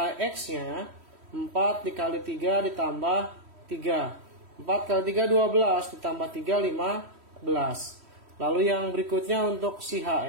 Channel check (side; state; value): left; late; 3.1 ms